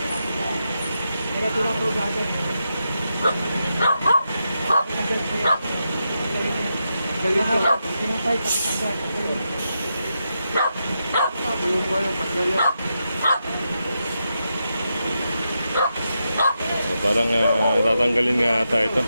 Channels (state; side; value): inverted; both; correlation -0.86